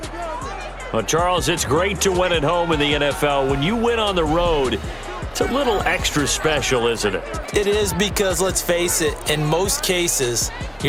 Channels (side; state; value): both; identical; correlation 1.00